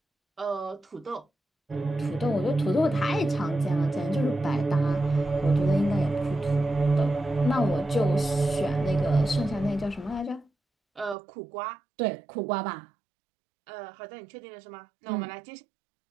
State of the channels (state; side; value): drops out; left; at 11.2 s